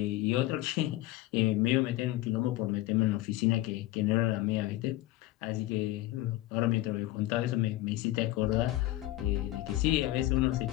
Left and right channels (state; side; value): quieter; right; 16.5 dB